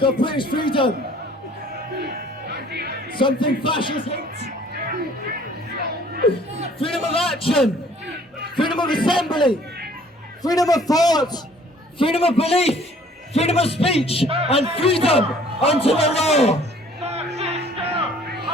of British freedom. Something fascists hate. Freedom of action, freedom of assembly, freedom of thought, freedom of belief, freedom of speech, and freedom unto the law.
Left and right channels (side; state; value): both; normal; correlation 0.56